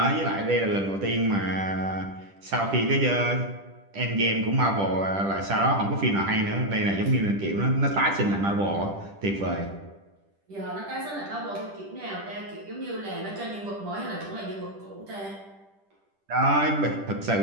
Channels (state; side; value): late; left; 10 ms